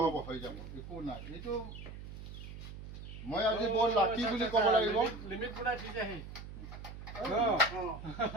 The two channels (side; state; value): right; noise; hum, 11 dB below the sound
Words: হৈ যাব একো নাই এইটো মই আজি বৰ লাকি বুলি ক'ব লাগিব